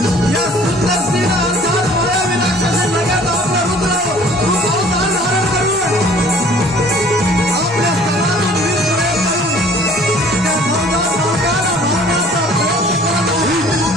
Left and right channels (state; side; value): normal; both; correlation 0.52